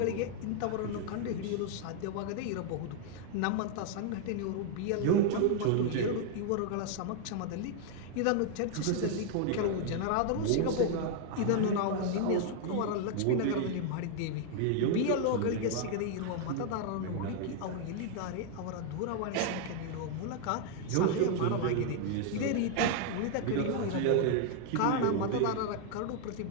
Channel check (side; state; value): both; different; correlation 0.00